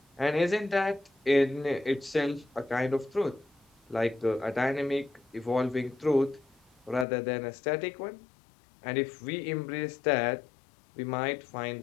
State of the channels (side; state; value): right; drops out; at 7.1 s